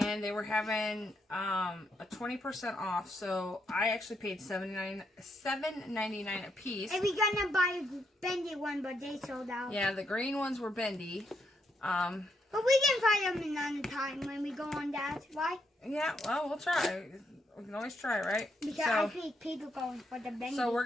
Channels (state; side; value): normal; both; correlation 0.78